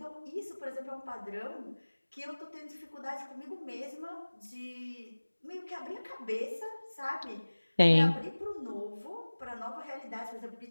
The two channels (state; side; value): inverted; both; correlation -1.00